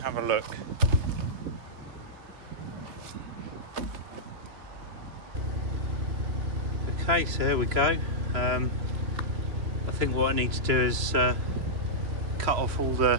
have a look. Okay, so here we go. I think what I need to do is cut off all the,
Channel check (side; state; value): left; late; 2.9 ms